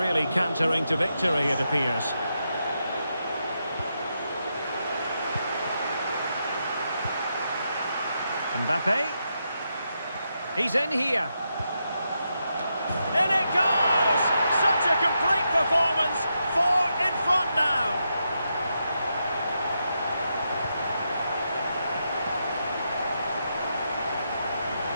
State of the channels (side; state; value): both; inverted; correlation -0.84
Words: cantering to victory, it appears. Mbappe. He's in here. In it goes! Such a complete performance. 4 in front now.